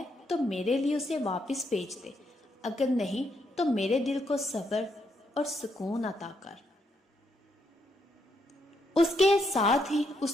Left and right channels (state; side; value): normal; both; correlation 0.77